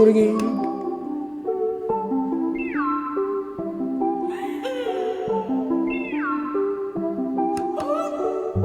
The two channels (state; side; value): identical; both; correlation 1.00